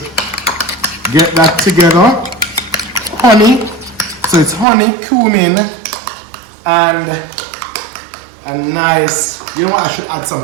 get that together. Honey. So it's honey, cumin, and a nice, you know what, I should add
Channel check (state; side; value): drops out; left; at 4.7 s